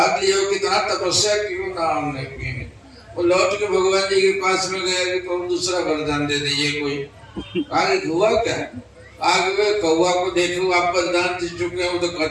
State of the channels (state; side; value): identical; both; correlation 1.00